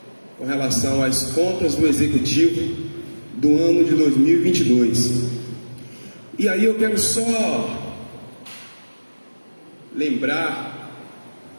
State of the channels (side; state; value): both; inverted; correlation -1.00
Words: com relação às contas do Executivo do ano de 2022. E aí eu quero só lembrar